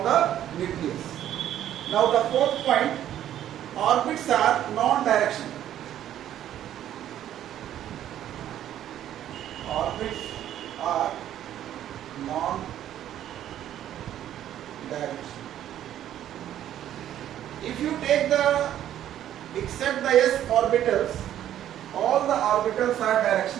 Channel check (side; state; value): left; quieter; 11.4 dB